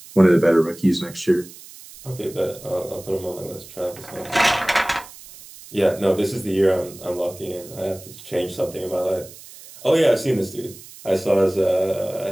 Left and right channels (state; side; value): noise; right; hiss, 18 dB below the sound